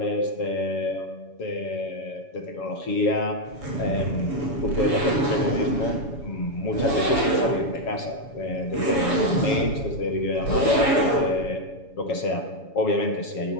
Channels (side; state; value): right; late; 7.1 ms